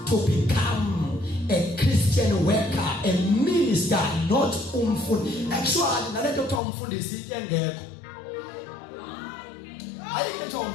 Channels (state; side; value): drops out; right; at 6.6 s